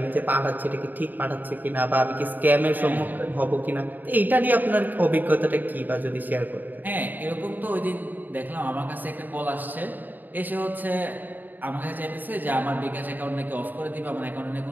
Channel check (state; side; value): late; left; 0.087 ms